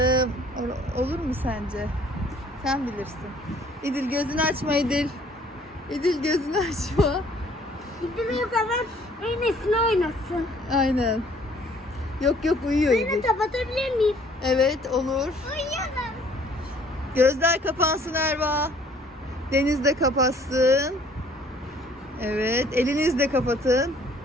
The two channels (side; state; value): both; normal; correlation 0.58